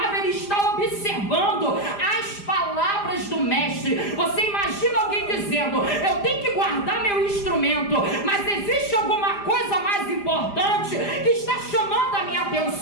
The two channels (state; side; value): late; right; 5.0 ms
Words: ele está observando as palavras do mestre. Você imagina alguém dizendo: eu tenho que guardar meu instrumento, mas existe alguma coisa mais importante que está chamando a minha